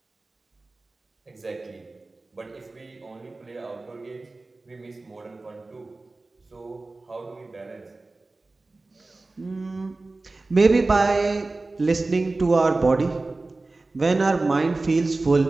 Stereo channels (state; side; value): quieter; left; 3.3 dB